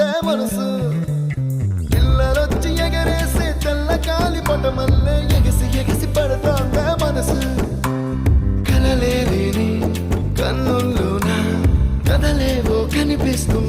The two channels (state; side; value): identical; both; correlation 1.00